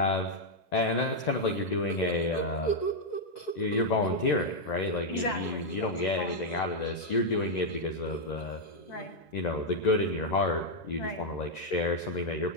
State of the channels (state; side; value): late; right; 1.9 ms